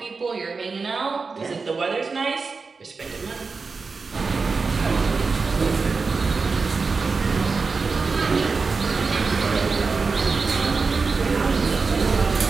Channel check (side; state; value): left; quieter; 4.5 dB